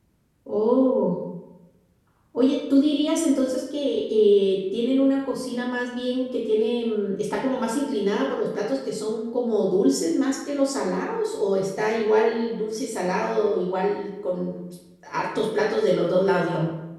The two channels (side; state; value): both; identical; correlation 1.00